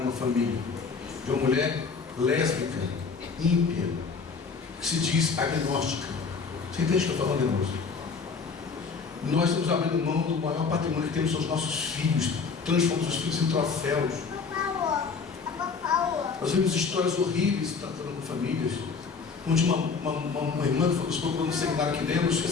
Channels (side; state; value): right; quieter; 5.1 dB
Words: uma família. De uma mulher lésbica, ímpia, que se diz agnóstica. Você entende o que eu estou falando, irmãos? Nós estamos abrindo mão do maior patrimônio que temos, são os nossos filhos, transformamos os filhos em troféus. Nós vimos histórias horríveis tratando com famílias, onde uma irmã que nos procurou no seminário que demos, que